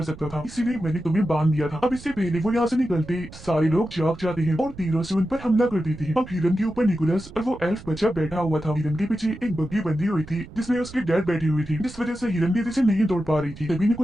सकता था, इसीलिए मैंने तुम्हें बांध दिया था। अब इससे पहले वो यहाँ से निकलते सारे लोग जाग जाते हैं और तीरों से उन पर हमला कर देते हैं। अब हिरन के ऊपर निकोलस और वो एल्फ बच्चा बैठा हुआ था। हिरन के पीछे एक बग्गी बंधी हुई थी जिसमें उसके डैड बैठी हुई थी, जिस वजह से हिरन तेजी से नहीं दौड़ पा रही थी। तभी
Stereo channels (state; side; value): noise; right; rumble, 17 dB below the sound